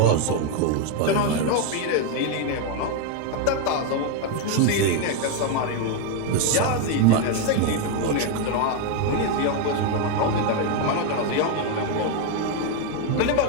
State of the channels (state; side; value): different; both; correlation 0.01